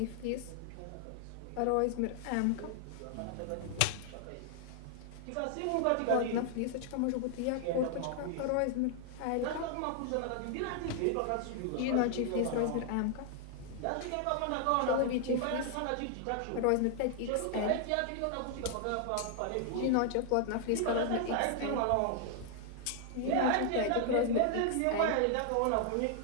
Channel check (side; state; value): both; different; correlation 0.00